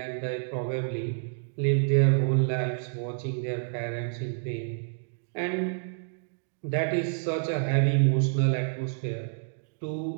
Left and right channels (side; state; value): left; silent; digital silence